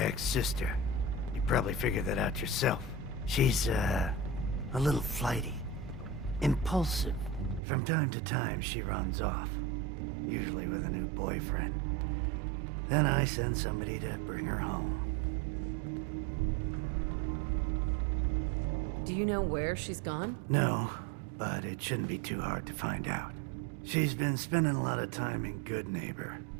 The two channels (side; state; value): left; drops out; at 7.6 s